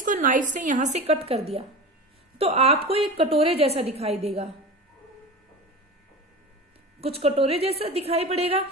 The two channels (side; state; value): both; normal; correlation 0.30